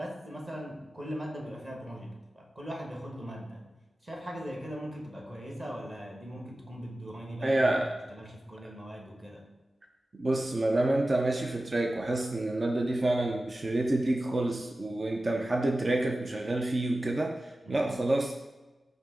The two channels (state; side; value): normal; both; correlation 0.95